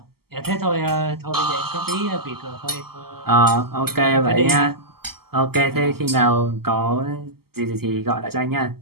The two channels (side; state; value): left; late; 0.95 ms